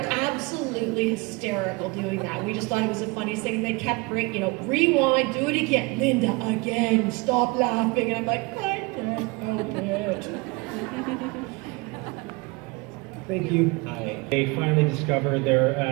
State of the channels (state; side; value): quieter; left; 26.3 dB